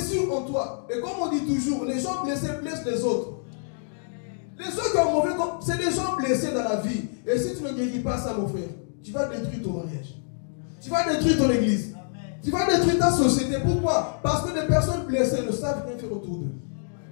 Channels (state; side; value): silent; right; digital silence